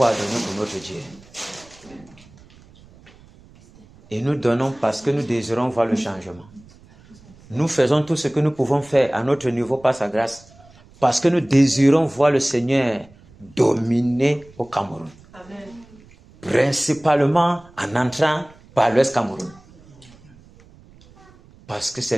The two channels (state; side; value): noise; right; rumble, 25 dB below the sound